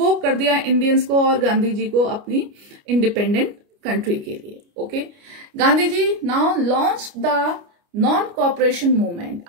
कर दिया इंडियंस को और गांधी जी को अपनी इंडिपेंडेंट कंट्री के लिए. Okay, Gandhi ji now launch the non cooperation movement.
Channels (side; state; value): left; late; 29 ms